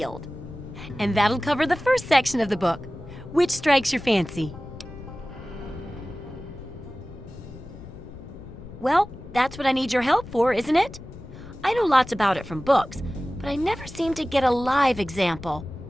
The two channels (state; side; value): noise; left; rumble, 15 dB below the sound